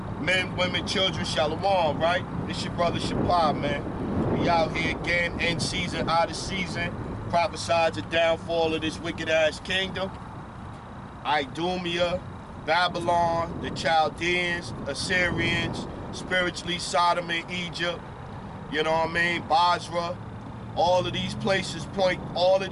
men, women, children, shalom, right? This your brother Shapar, man. We out here again, in season, out of season, prophesied the downfall of this wicked-ass kingdom. Idumea, Babylon, the Chaldeans, Assyrians, spiritually Sodom and Egypt, you know what I mean, Basra. All of these places point, all of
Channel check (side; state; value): both; identical; correlation 1.00